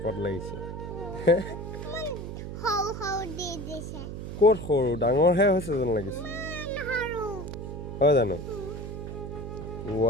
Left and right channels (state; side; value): noise; right; hum, 7 dB below the sound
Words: লাগিছে ক'ত সৰু ডাঙৰহে হৈছে যেন লাগিছে হয় জানো